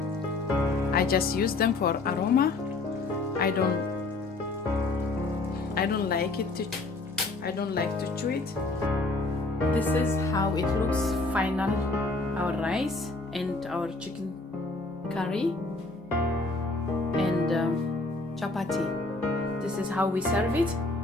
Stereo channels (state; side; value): quieter; right; 3.3 dB